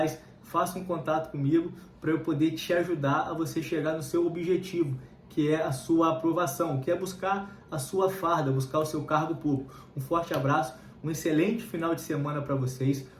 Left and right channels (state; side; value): identical; both; correlation 1.00